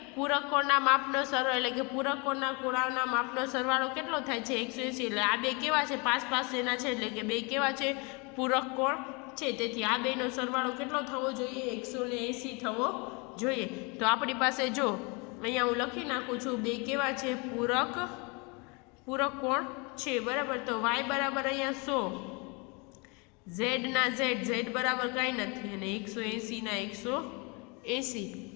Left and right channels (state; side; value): quieter; right; 30.3 dB